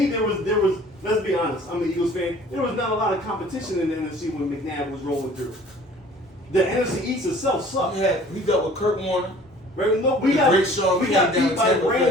there was. Let's be honest. I'm an Eagles fan. There was not a lot of competition in the NFC when McNabb was rolling through. The NFC East itself sucked. We dealt with Kurt Warner. Right? No, The great Sean we got came beat down by Tampa Bay.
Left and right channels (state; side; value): normal; both; correlation 0.50